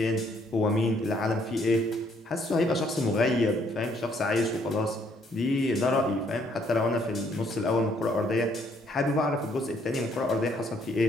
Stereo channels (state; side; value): normal; both; correlation 0.67